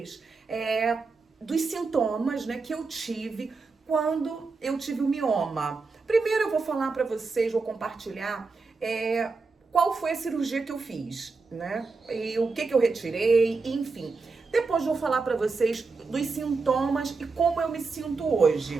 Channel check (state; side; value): quieter; left; 4.2 dB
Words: dos sintomas, né, que eu tive quando eu tive o mioma. Primeiro eu vou falar pra vocês, vou compartilhar qual foi a cirurgia que eu fiz, né? E o que eu retirei, enfim. Depois vou falar pra vocês dos sintomas e como eu me sinto